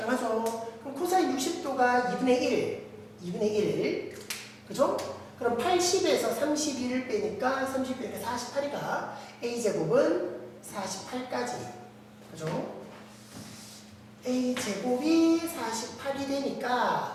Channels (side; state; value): both; identical; correlation 1.00